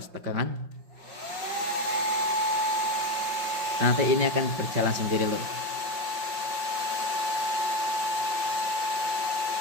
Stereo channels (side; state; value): left; late; 5.6 ms